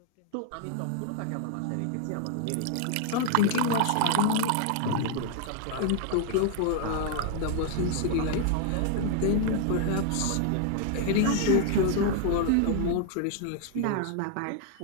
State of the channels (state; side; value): different; both; correlation 0.00